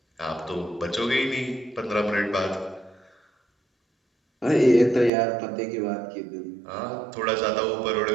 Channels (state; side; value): drops out; left; at 5.1 s